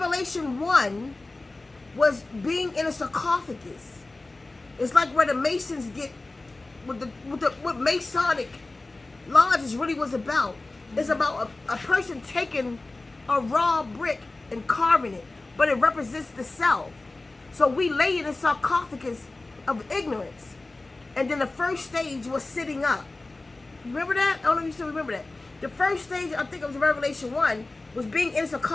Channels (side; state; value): right; quieter; 3.1 dB